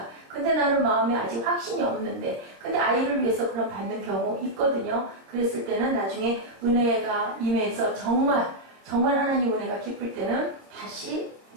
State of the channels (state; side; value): late; left; 26 ms